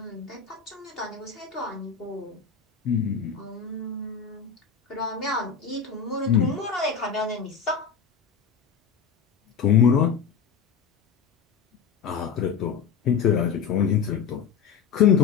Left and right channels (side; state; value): right; quieter; 6.7 dB